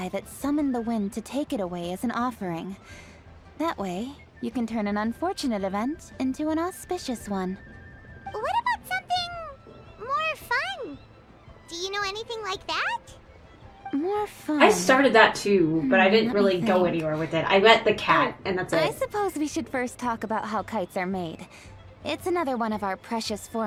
that summoned the wind to take it away as an offering. That way, you can turn an unfortunate event into an auspicious one. What about something more fun? Do you know anything like that? More fun. I started that too, but I didn't let me really go think. anywhere with it. I met the cat, and that's I it. suppose we should first talk about how kites are made. It's another one of our precious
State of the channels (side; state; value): both; identical; correlation 1.00